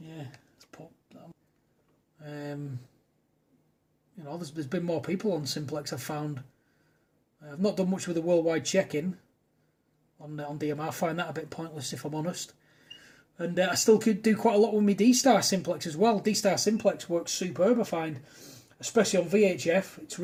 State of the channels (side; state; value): both; identical; correlation 1.00